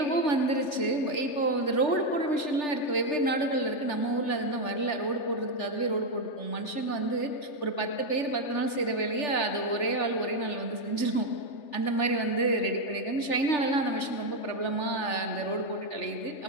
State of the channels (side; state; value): right; late; 3.4 ms